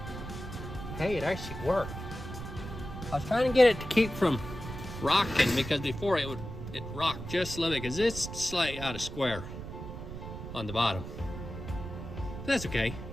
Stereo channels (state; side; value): noise; right; rumble, 9 dB below the sound